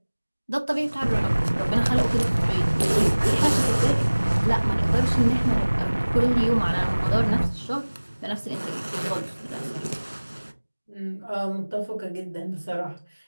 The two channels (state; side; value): inverted; both; correlation -1.00